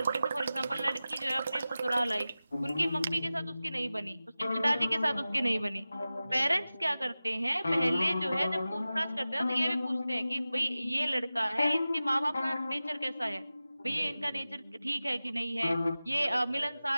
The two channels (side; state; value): both; inverted; correlation -0.95